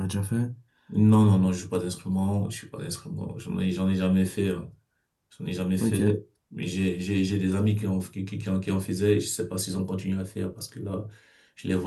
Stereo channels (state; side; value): identical; both; correlation 1.00